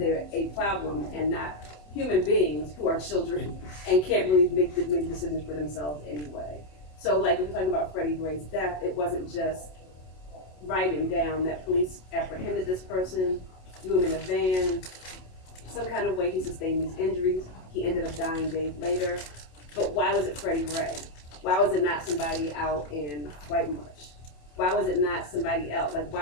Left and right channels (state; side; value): late; right; 27 ms